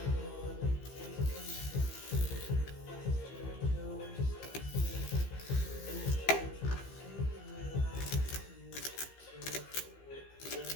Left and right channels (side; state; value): right; late; 15 ms